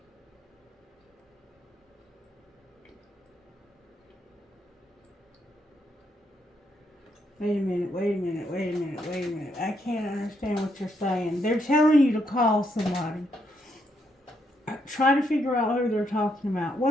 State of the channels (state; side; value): normal; both; correlation 0.77